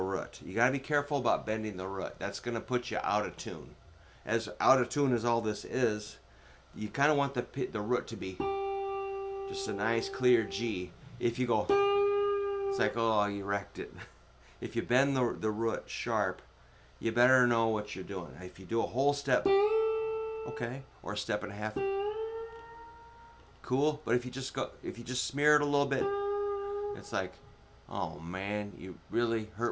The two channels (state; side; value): identical; both; correlation 1.00